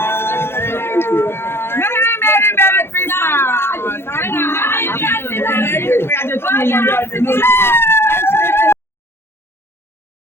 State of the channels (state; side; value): late; right; 0.12 ms